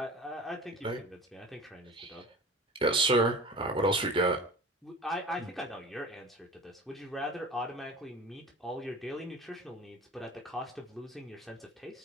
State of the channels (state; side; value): normal; both; correlation 0.39